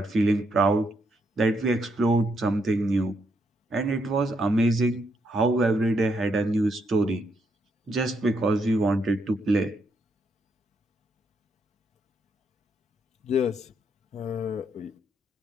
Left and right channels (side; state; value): both; normal; correlation 0.77